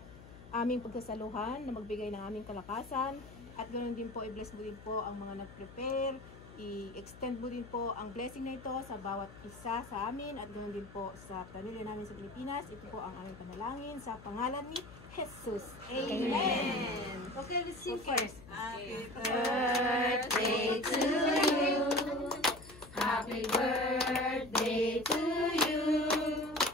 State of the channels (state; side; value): noise; left; hum, 18 dB below the sound